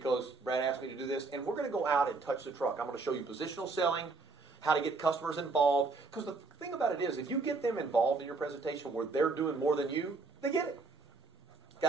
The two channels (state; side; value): quieter; left; 3.9 dB